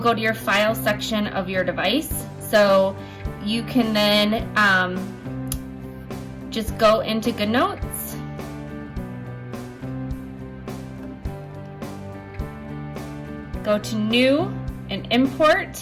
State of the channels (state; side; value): identical; both; correlation 1.00